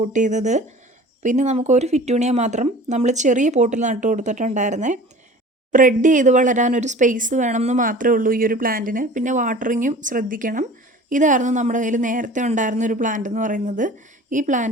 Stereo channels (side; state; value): both; normal; correlation 0.43